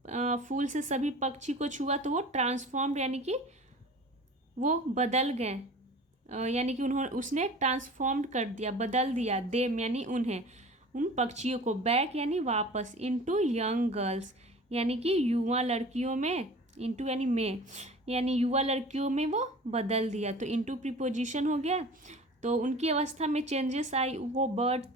फूल से सभी पक्षी को छुआ तो वो ट्रांसफॉर्म्ड यानी कि वो बदल गए, यानी कि उसने ट्रांसफॉर्म्ड कर दिया, बदल दिया, देम यानी उन्हें, उन पक्षियों को, बैक यानी वापस, इनटू यंग गर्ल्स यानी कि युवा लड़कियों में, इनटू यानी में, यानी युवा लड़कियों में वो बदल दिया। तो इनटू प्रीपोजिशन हो गया। तो उनकी अवस्था में चेंजेस आई, वो बर्ड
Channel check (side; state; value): both; normal; correlation 0.41